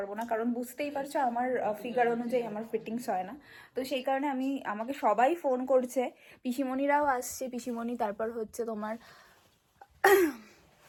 না, কারণ বুঝতেই পারছো আমার ফিগার অনুযায়ী আমার ফিটিংস হয় না। তো সেই কারণে আমাকে সবাই ফোন করছে, পিসিমণিরাও আসছে, পিসিমণি, তারপর হচ্ছে তোমার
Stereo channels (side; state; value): both; identical; correlation 1.00